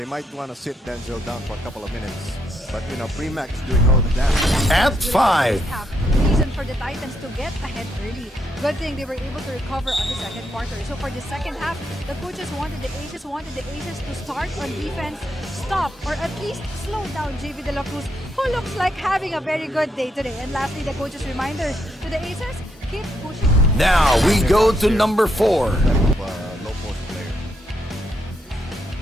might want to sit Denzel down for a couple of minutes. But, Premac is doing all the damage. At 5. Reason for the Titans to get ahead early. Good thing they were able to recover on the second quarter. So for the second half, the coaches wanted the Aces to start on defense, stop, or at least slow down JV De La Cruz, who looks like having a very good day today. And lastly, the coaches' reminder to the Aces, keep pushing. Now we go to number 4. Low post player.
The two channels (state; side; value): normal; both; correlation 0.78